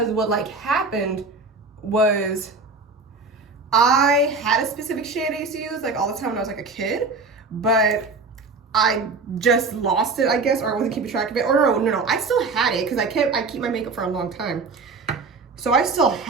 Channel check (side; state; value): left; quieter; 4.1 dB